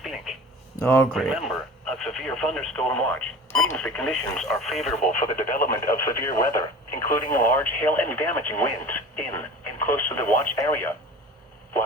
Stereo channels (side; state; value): both; normal; correlation 0.38